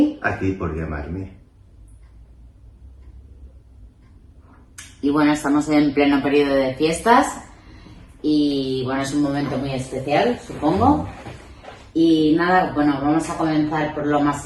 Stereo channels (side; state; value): both; identical; correlation 1.00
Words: Aquí por llamarme. Y bueno, estamos en pleno periodo de fiestas y bueno, es un momento muy especial, supongo. Y nada, bueno, vamos a comenzar por lo más